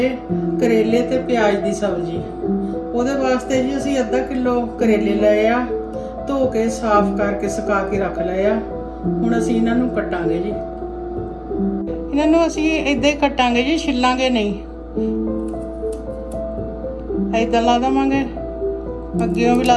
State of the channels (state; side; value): identical; both; correlation 1.00